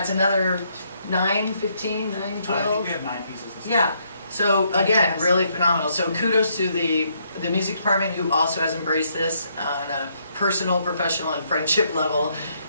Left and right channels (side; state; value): both; inverted; correlation -0.73